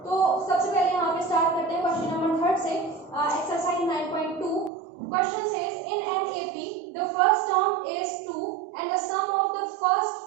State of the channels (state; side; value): drops out; left; at 4.7 s